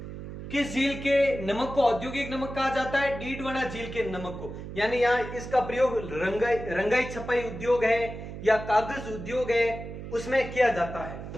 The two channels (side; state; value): right; noise; hum, 10 dB below the sound